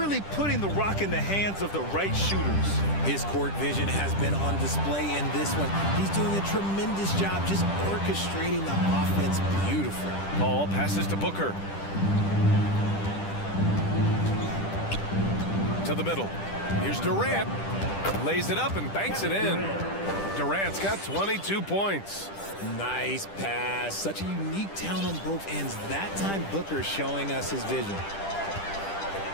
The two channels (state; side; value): late; right; 10 ms